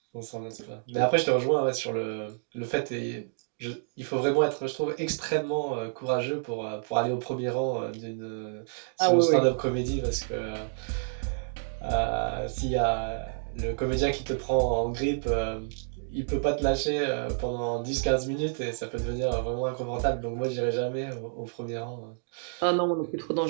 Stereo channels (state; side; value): silent; left; digital silence